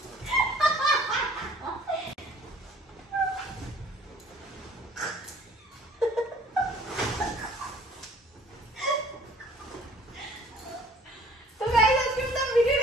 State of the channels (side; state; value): both; normal; correlation 0.54